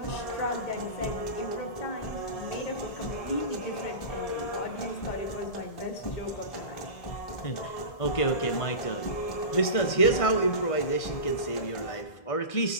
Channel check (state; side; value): late; right; 1.6 ms